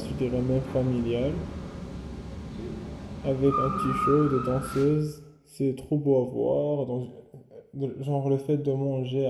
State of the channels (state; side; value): identical; both; correlation 1.00